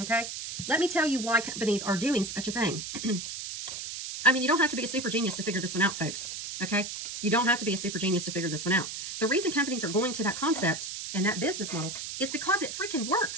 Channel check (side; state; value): right; noise; hiss, 7 dB below the sound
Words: Let me tell you why companies are doing such a thing. I mean, you don't have to be a super genius to figure this one out, folks. Okay? You don't have to be a super genius to figure this one out. The reason companies are going to that concept and that business model is because it freaking